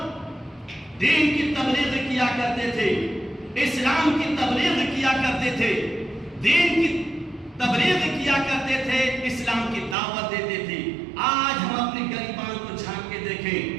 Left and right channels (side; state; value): left; drops out; at 10.0 s